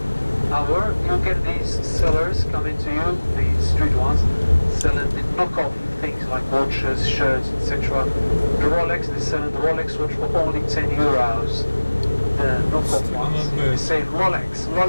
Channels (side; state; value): both; inverted; correlation -1.00